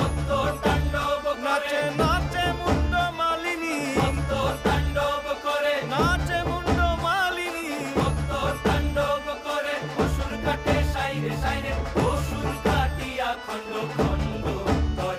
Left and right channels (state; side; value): identical; both; correlation 1.00